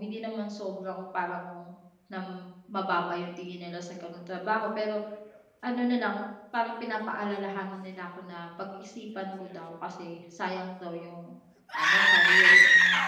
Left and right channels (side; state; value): both; identical; correlation 1.00